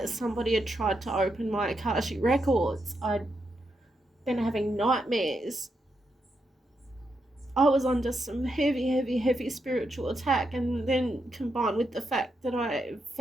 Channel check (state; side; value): normal; both; correlation 0.83